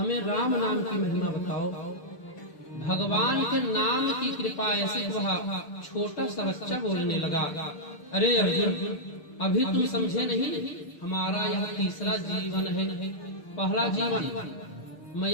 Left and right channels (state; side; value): late; right; 6.8 ms